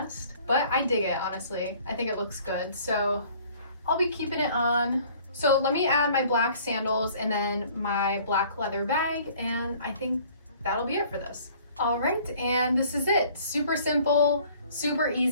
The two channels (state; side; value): inverted; both; correlation -0.54